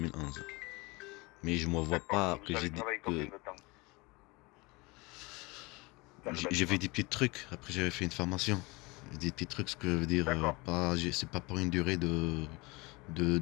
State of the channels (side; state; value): right; quieter; 24.9 dB